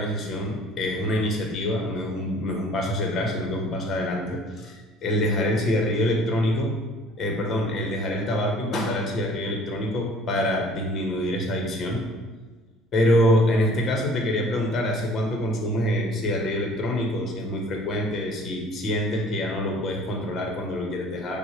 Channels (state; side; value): normal; both; correlation 0.52